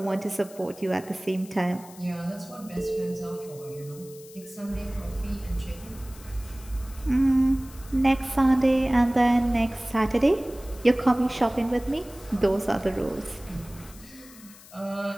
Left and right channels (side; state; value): left; noise; hiss, 20 dB below the sound